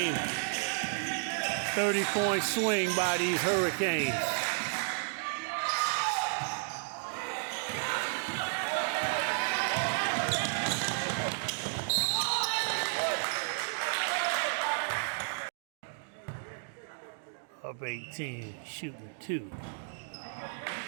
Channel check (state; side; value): silent; left; digital silence